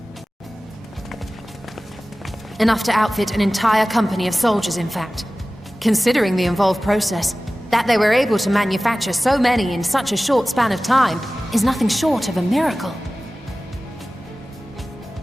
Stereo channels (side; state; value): both; normal; correlation 0.97